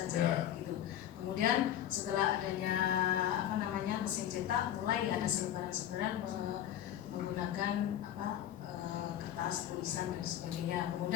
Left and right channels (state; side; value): quieter; right; 11.4 dB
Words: menggunakan kertas, tulisan dan sebagainya.